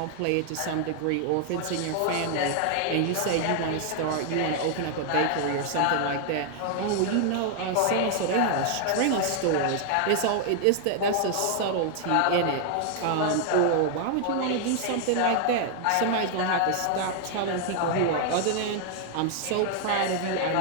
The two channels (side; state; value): both; different; correlation 0.00